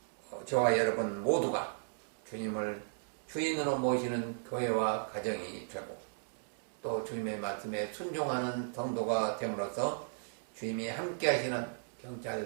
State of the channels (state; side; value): silent; left; digital silence